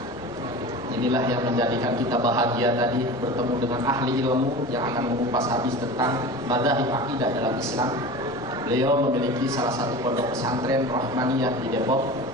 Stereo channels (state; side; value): normal; both; correlation 0.33